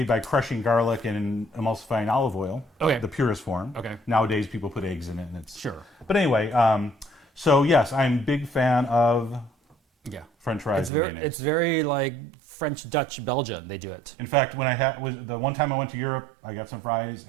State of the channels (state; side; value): drops out; left; at 10.9 s